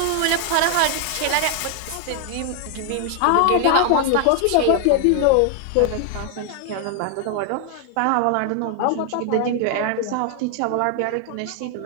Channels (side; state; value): both; different; correlation 0.00